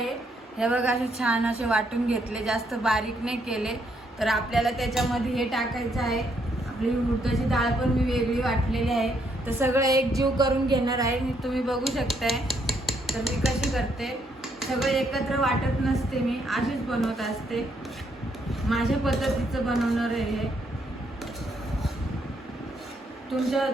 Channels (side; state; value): both; normal; correlation 0.73